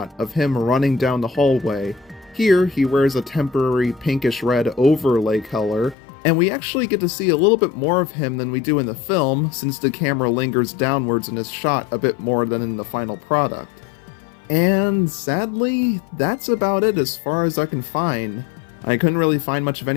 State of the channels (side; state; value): right; drops out; at 6.0 s